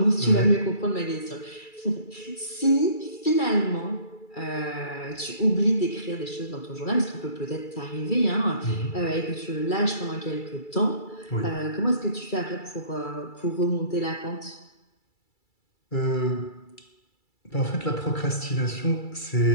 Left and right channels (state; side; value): late; right; 2.3 ms